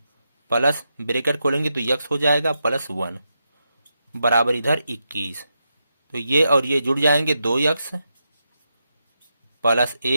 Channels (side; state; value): both; inverted; correlation -0.86